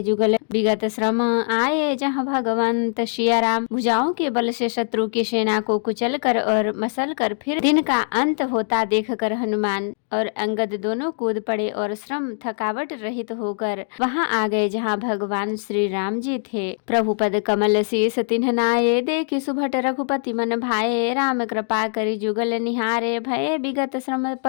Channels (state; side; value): silent; right; digital silence